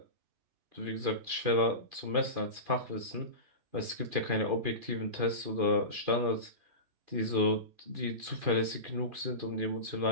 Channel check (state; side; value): late; left; 2.4 ms